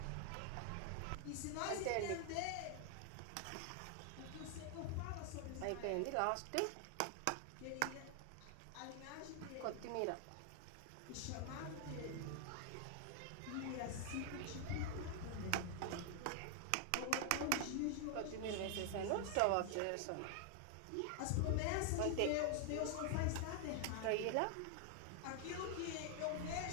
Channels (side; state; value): both; different; correlation 0.00